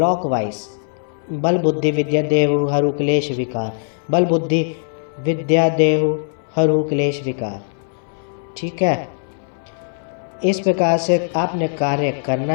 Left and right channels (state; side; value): silent; right; 61 dB below the other